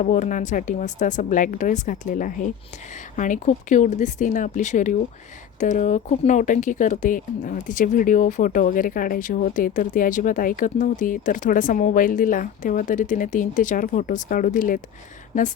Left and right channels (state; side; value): quieter; right; 9.0 dB